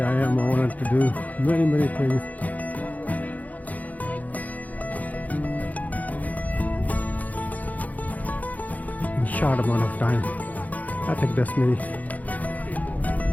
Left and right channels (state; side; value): late; right; 0.078 ms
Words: I am, I wanted to do many things. In short amount of time. I think that's me.